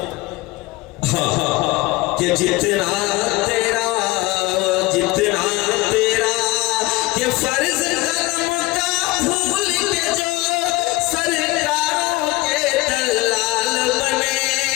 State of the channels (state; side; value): quieter; right; 20.6 dB